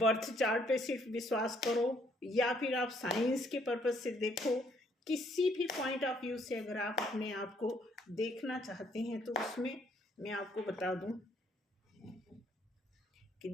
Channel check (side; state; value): both; normal; correlation 0.67